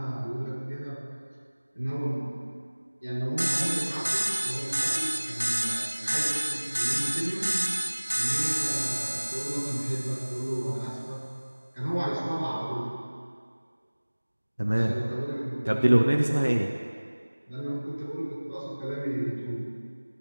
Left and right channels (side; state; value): both; inverted; correlation -1.00